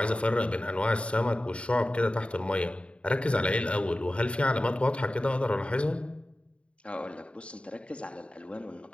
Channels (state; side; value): late; right; 0.059 ms